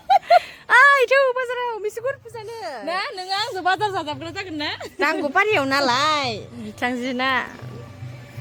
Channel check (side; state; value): both; identical; correlation 1.00